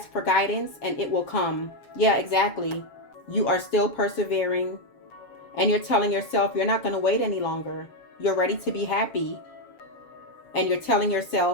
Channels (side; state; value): right; late; 7.2 ms